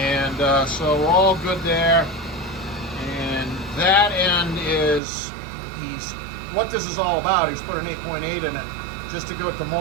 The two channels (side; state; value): left; drops out; at 5.0 s